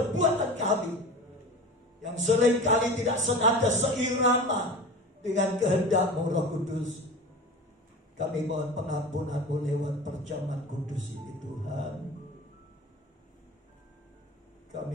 kami, yang seringkali tidak senada seirama dengan kehendak-Mu Roh Kudus. Kami mohon pengampunan-Mu lewat perjamuan kudus ini Tuhan.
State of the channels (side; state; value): both; normal; correlation 0.33